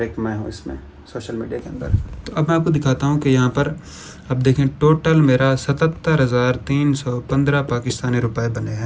एक मैं हूँ इसमें सोशल मीडिया के अंदर। तो अब मैं आपको दिखाता हूँ कि यहाँ पर अब देखें, टोटल मेरा 77,315 पाकिस्तानी रुपए बने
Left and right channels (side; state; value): both; identical; correlation 1.00